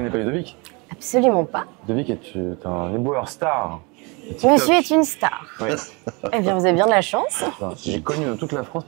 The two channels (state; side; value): quieter; left; 29.1 dB